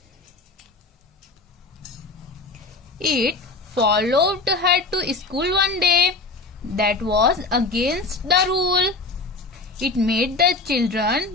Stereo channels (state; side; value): quieter; right; 3.4 dB